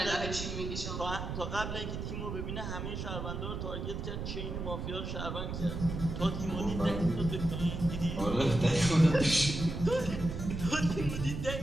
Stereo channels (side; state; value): right; noise; rumble, 5 dB below the sound